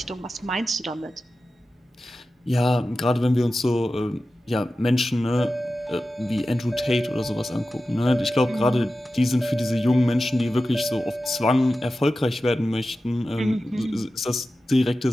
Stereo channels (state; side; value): normal; both; correlation 0.93